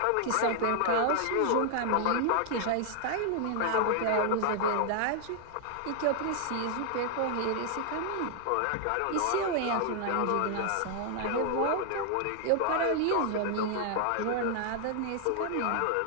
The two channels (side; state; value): both; different; correlation 0.00